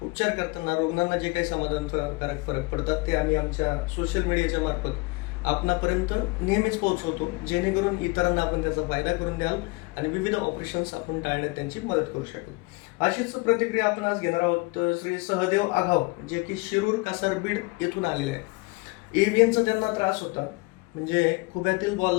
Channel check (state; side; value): quieter; right; 25.9 dB